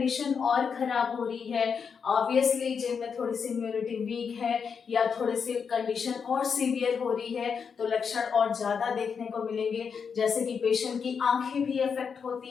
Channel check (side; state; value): right; quieter; 6.3 dB